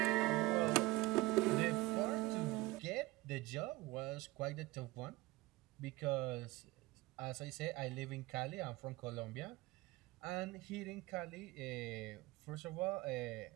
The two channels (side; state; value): left; quieter; 20.1 dB